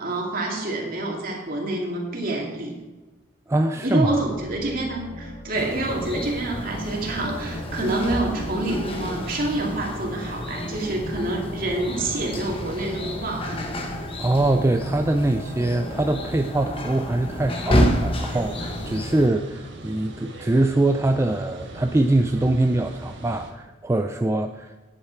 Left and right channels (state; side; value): normal; both; correlation 0.74